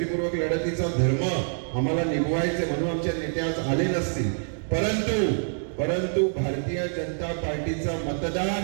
लढतीचा धर्म आम्हाला निभवायचे म्हणून आमचे नेते आज आले नसतील, परंतु भारतीय जनता पार्टीचा मतदार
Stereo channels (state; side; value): silent; left; digital silence